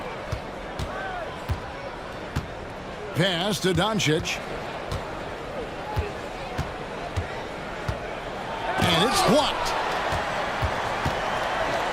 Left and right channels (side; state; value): both; identical; correlation 1.00